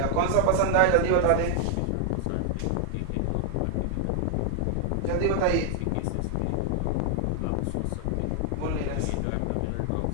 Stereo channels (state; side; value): different; both; correlation 0.00